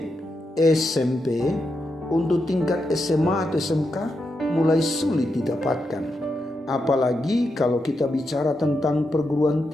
SMP, untuk tingkat SMA atau SMK mulai sulit didapatkan. Apalagi kalau kita bicara tentang perguruan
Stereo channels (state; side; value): normal; both; correlation 0.85